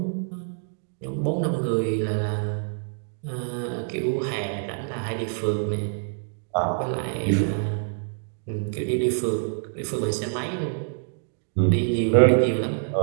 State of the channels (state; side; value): silent; left; digital silence